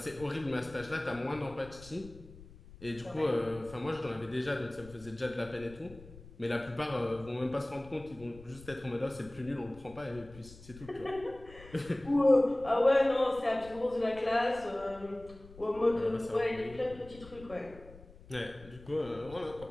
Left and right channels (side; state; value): left; noise; rumble, 19 dB below the sound